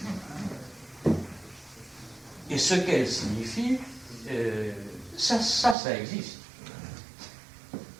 Et ce qu'elles signifient, ça existe.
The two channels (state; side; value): drops out; left; at 5.8 s